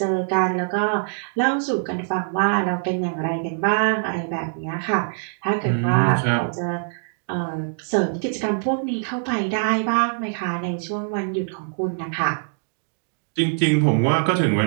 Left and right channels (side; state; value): left; silent; digital silence